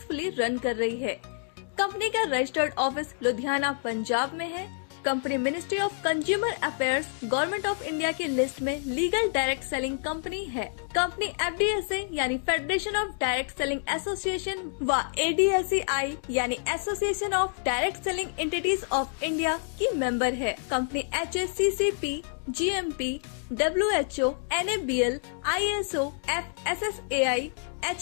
रन कर रही है। कंपनी का रजिस्टर्ड ऑफिस लुधियाना, पंजाब में है। Company ministry of consumer affairs, government of India की लिस्ट में लीगल डायरेक्ट सेलिंग कंपनी है। कंपनी FDSA यानी federation of direct selling association व ADSEI यानी association of direct selling entities of India की मेंबर है। Company HACCP, GMP, WHO, NABL, ISO, FSSAI,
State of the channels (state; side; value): silent; right; digital silence